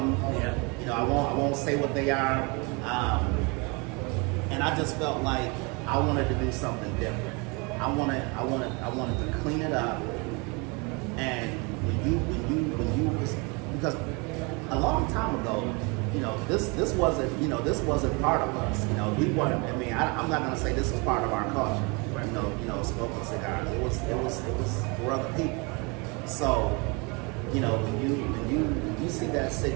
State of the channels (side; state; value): left; quieter; 29.8 dB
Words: Yeah. You know, I won't say what they are, and I just felt like I wanted to do something different. I wanted to clean it up, and because a long time ago, you know, this wasn't part of us. You know, we weren't. I mean, I'm not gonna say this was part of our culture. You know, smoking cigars. It was for other people. So, you know, when you see that